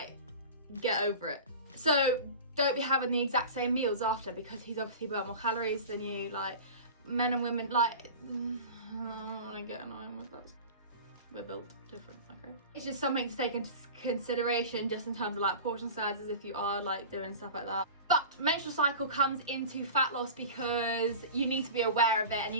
get over it. So don't be having the exact same meals after, because he's obviously burnt more calories than you. Like, men and women, like, I get annoying with that. We're built different, okay? It's just something to take into consideration just in terms of like portion sizes if you are like doing stuff like that. But menstrual cycle comes into fat loss because you need to be aware of it, and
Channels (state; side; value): inverted; both; correlation -0.35